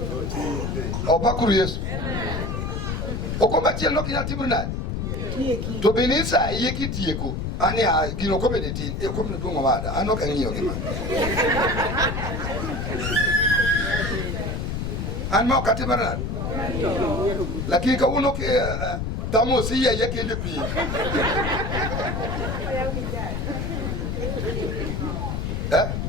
opakuru Yesu okomba chiel no kinya timo nade to benisa iye kitieko ani gino komede tin e komne duongo wada an ok ang'iyo gima an ma okatimo nade lakini kawuono ke tamo si iye kende pi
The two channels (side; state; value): left; noise; rumble, 2 dB below the sound